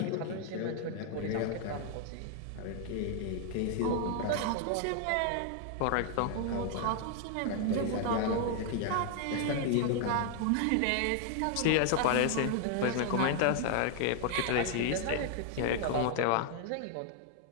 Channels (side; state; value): both; different; correlation 0.00